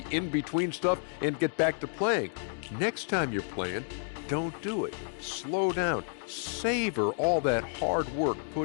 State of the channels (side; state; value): right; silent; digital silence